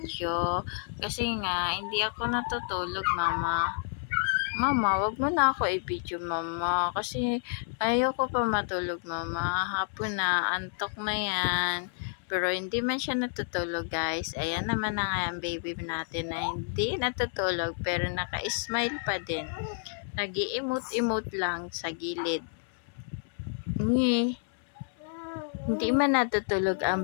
Kasi nga, hindi ako natutulog mama. Mama, wag mo na ako i-video mama. Kasi ayoko pa matulog mama. Hapon na, antok na yan. Pero hindi man siya natutulog guys. Ayan naman na nga ang baby natin na hindi natutulog pero naka-smile pa din. Nag-i-emote-emote lang sa gilid. Hindi man natutulog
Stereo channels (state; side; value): silent; right; 58 dB below the other